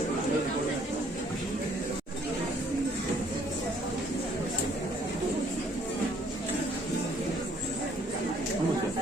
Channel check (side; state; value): both; normal; correlation 0.63